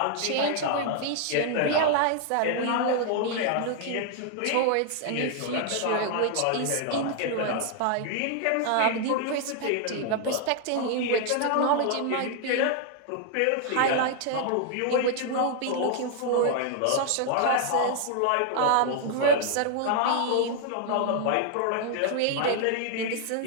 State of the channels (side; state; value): both; different; correlation 0.00